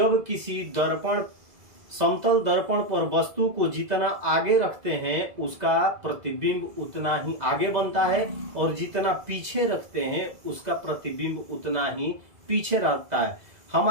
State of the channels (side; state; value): left; late; 2.0 ms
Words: किसी समतल दर्पण पर वस्तु को जितना आगे रखते हैं उसका प्रतिबिंब उतना ही आगे बनता है, और जितना पीछे रखते हैं उसका प्रतिबिंब उतना ही पीछे रहता है।